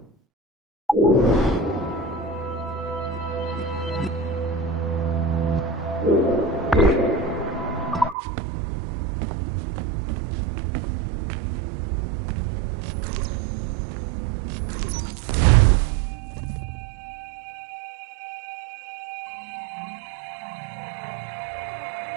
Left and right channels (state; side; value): drops out; left; at 8.2 s